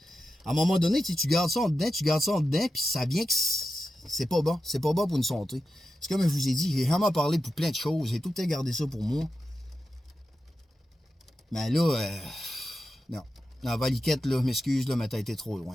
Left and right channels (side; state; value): both; normal; correlation 0.91